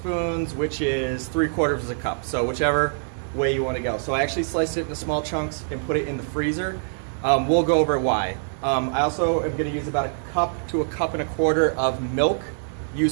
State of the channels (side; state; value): left; silent; digital silence